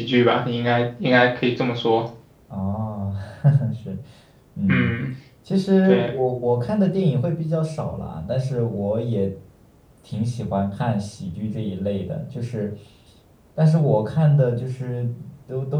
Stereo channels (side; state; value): both; identical; correlation 1.00